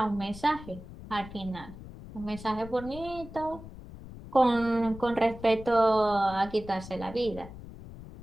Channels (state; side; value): noise; left; rumble, 14 dB below the sound